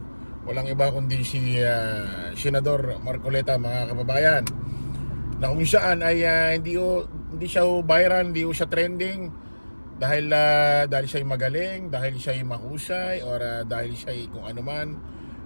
Walang iba kundi si Senador Marcoleta mga kababayan. Na kung saan ay hindi siya viral, hindi siya trending dahil siya magaling, dahil siya mahusay, or dahil siya kung ano man.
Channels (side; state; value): both; inverted; correlation -1.00